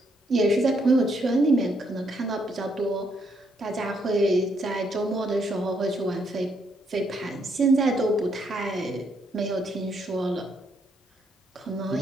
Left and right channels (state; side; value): normal; both; correlation 0.74